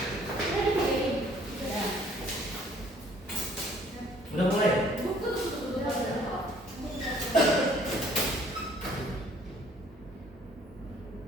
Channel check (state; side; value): normal; both; correlation 0.59